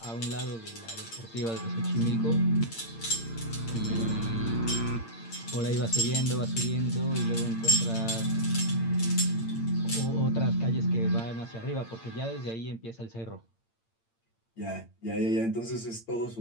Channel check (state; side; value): late; right; 8.8 ms